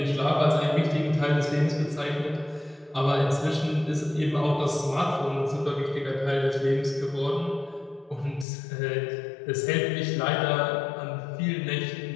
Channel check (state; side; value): drops out; right; at 8.5 s